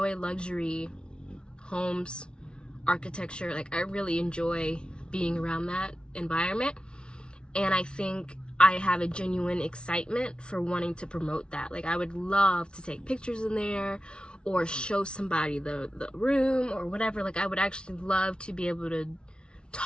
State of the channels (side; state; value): right; late; 0.056 ms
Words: luxury homes, architecture. Like, I really enjoy being around that environment. And I think I have a genuine excitement for wanting to promote that. Like, I would love to take pictures in there or show somebody the room or whatever. Like, I would actually love to be able to